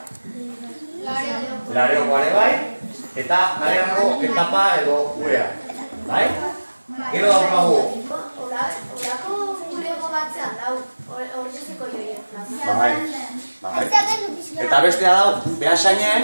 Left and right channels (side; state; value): both; inverted; correlation -1.00